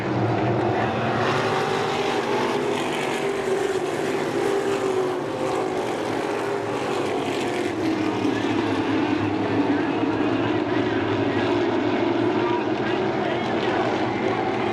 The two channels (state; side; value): identical; both; correlation 1.00